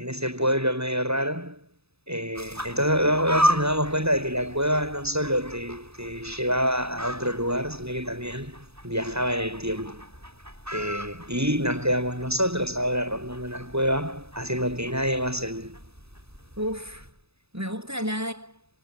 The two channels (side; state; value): left; late; 0.79 ms